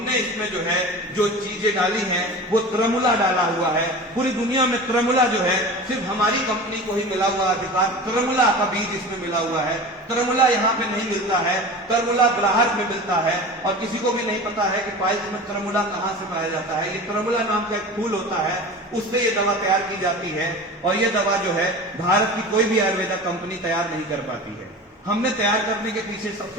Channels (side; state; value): both; normal; correlation 0.33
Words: इसमें जो है जो चीजें डाली हैं वो त्रमुला डाला हुआ है। पूरी दुनिया में त्रमुला जो है सिर्फ हमारी कंपनी को ही मिला हुआ अधिकार, त्रमुला का बीज इसमें मिला हुआ है। त्रमुला यहाँ पे नहीं मिलता है, त्रमुला ग्राहक में मिलता है, और किसी को भी नहीं पता है कि पाइल्स में त्रमुला कहाँ से पाया जाता है। ये त्रमुला नाम का एक फूल होता है, उससे ये दवा तैयार की जाती है, और ये दवा जो है भारत की कोई भी आयुर्वेदा कंपनी तैयार नहीं कर पाती है। हमने तैयार करने के पीछे